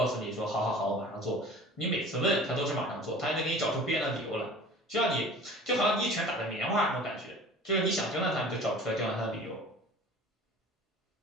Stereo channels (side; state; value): both; normal; correlation 0.43